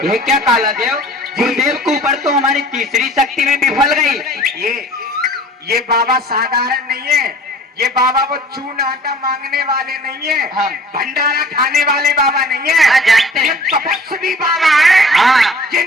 ये क्या काला देव गुरुदेव के ऊपर तो हमारी तीसरी शक्ति में विफल गई। ये बाबा साधारण नहीं है। ये बाबा वो चून आटा मांगने वाले नहीं है। हाँ। भंडारा खाने वाले बाबा नहीं है। हाँ, जानते हैं। ये तपस्वी बाबा है। हाँ। ये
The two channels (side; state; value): both; normal; correlation 0.48